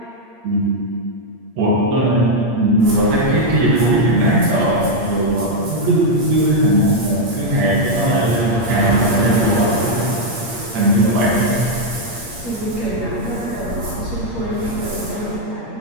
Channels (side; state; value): left; late; 8.6 ms